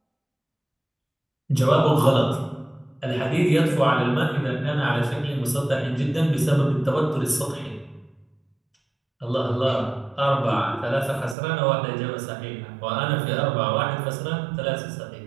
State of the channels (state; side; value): drops out; left; at 11.4 s